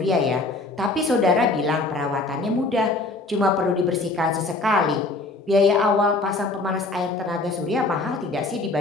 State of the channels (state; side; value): quieter; right; 3.2 dB